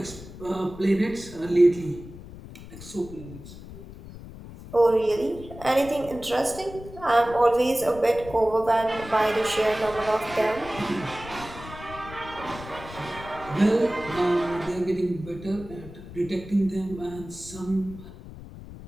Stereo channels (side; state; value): left; noise; rumble, 15 dB below the sound